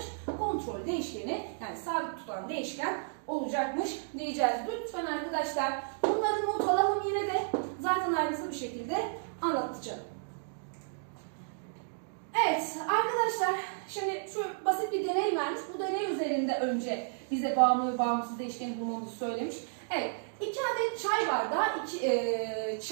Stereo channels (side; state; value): left; silent; digital silence